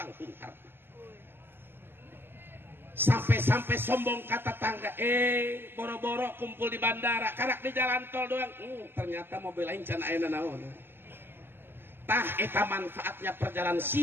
Sampai-sampai sombong kata tangga, boro-boro kumpul di bandara, karak di jalan tol doang. Ternyata mobil lain can ayeuna naon. Tah eta manfaatnya perjalanan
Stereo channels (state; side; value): late; left; 0.10 ms